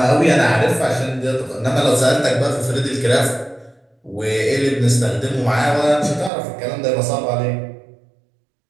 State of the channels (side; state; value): left; drops out; at 6.3 s